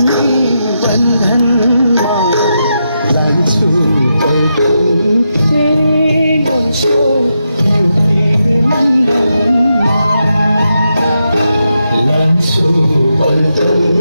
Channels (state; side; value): inverted; both; correlation -0.85